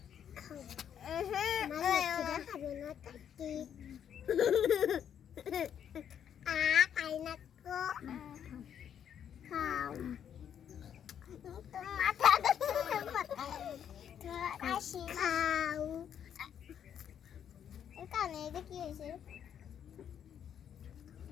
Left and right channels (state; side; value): quieter; right; 9.0 dB